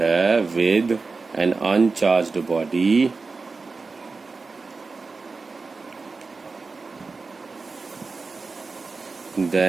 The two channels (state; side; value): quieter; left; 4.2 dB